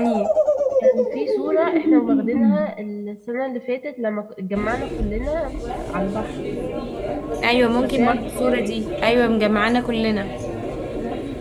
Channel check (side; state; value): both; identical; correlation 1.00